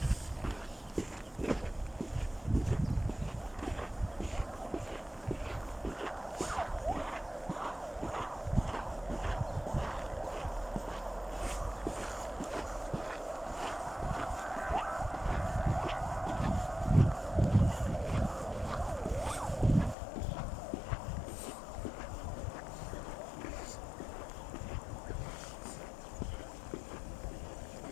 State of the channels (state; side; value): drops out; right; at 20.0 s